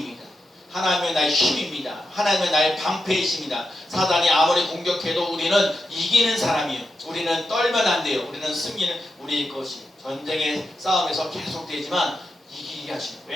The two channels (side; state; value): both; normal; correlation 0.87